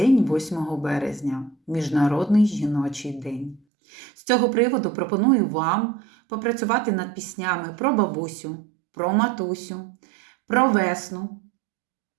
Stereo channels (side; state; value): left; drops out; at 3.6 s